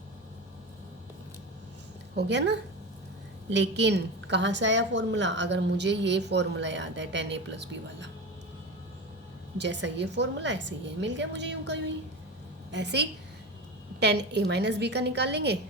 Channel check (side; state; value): both; normal; correlation 0.24